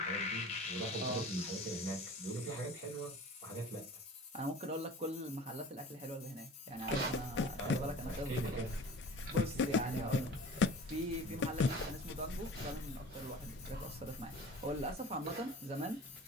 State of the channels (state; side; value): normal; both; correlation 0.42